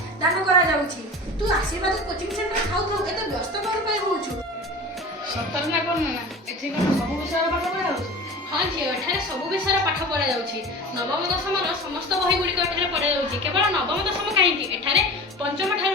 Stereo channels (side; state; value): both; normal; correlation 0.35